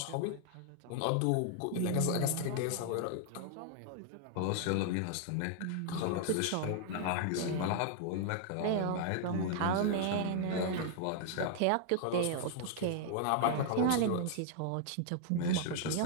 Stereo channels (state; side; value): different; both; correlation 0.00